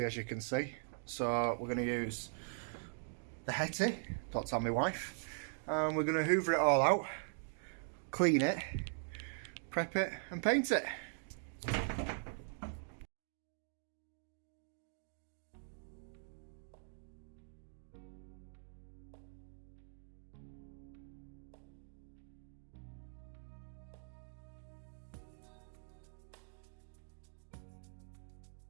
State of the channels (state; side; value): silent; left; digital silence